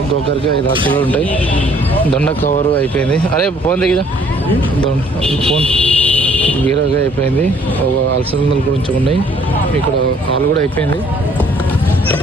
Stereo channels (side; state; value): both; normal; correlation 0.61